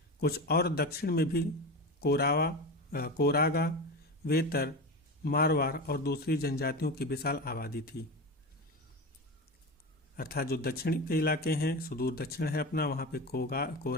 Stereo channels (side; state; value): both; normal; correlation 0.24